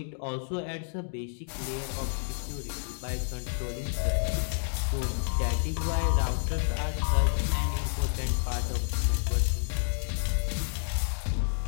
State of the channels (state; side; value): silent; right; digital silence